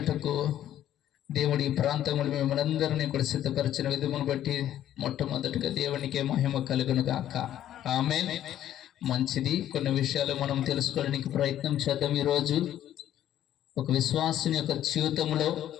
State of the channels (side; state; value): right; quieter; 11.7 dB